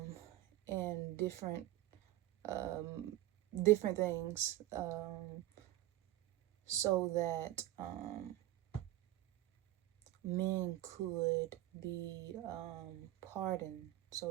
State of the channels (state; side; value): quieter; left; 14.8 dB